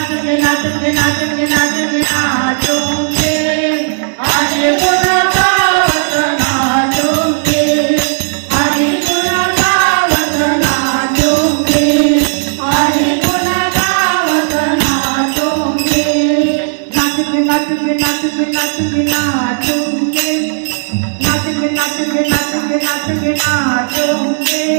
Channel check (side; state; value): left; silent; digital silence